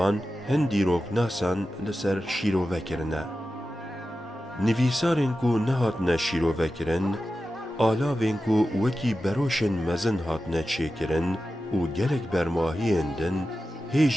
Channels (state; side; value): normal; both; correlation 0.93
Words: هندی روک ناسان لسر شیرو بکرنه نویسارین کو نهاتنه شیرو بکرن آلاوین کو وکی بروشن مزن هاتنه چیکرن و گلک برماهی اندن